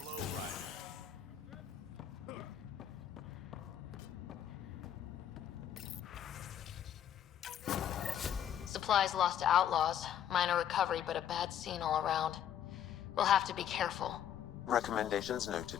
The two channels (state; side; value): quieter; right; 10.0 dB